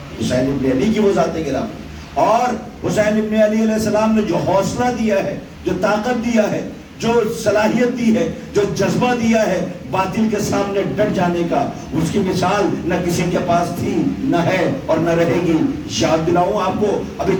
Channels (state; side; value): identical; both; correlation 1.00